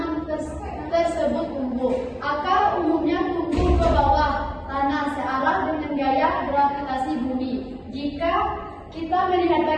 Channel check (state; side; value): identical; both; correlation 1.00